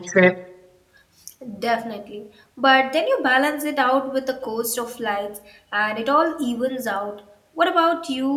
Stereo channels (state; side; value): identical; both; correlation 1.00